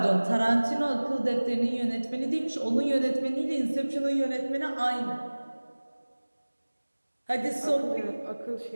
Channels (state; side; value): inverted; both; correlation -1.00